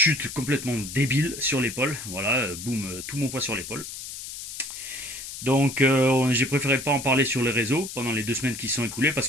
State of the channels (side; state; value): left; noise; hiss, 10 dB below the sound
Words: complètement débile sur l'épaule. Voilà, boum, tout mon poids sur l'épaule. Donc j'ai préféré pas en parler sur les réseaux pendant les 2 semaines qui se sont écoulées parce